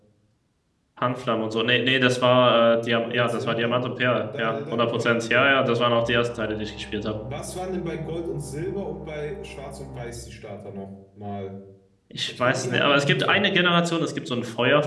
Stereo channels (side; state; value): both; identical; correlation 1.00